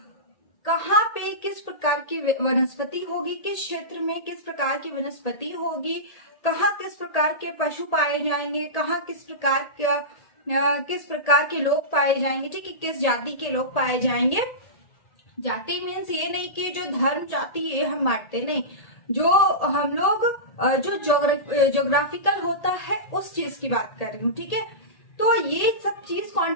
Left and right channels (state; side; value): late; right; 1.8 ms